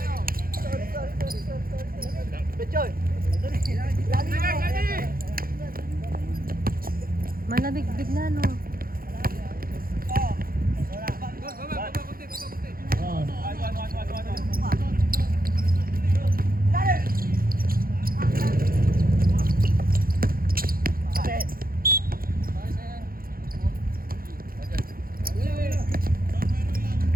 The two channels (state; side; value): late; left; 0.42 ms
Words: Manabig-big na no.